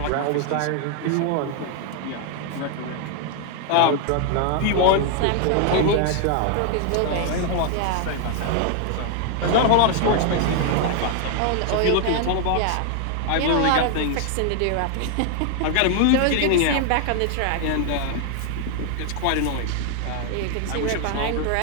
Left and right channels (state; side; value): different; both; correlation 0.00